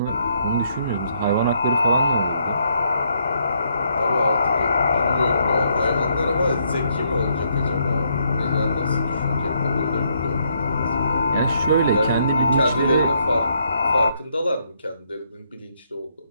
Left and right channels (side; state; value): both; inverted; correlation -0.73